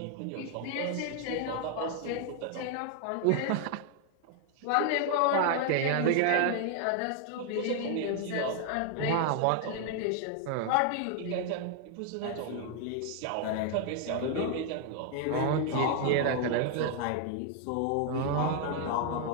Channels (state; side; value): different; both; correlation 0.00